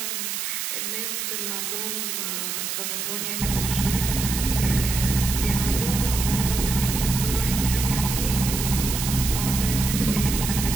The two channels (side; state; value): right; noise; hiss, 3 dB below the sound